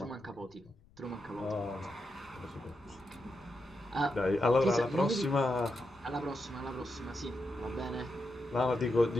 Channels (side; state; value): left; noise; rumble, 27 dB below the sound